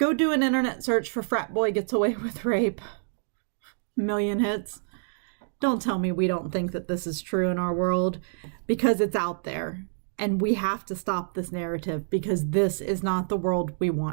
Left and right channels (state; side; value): silent; left; digital silence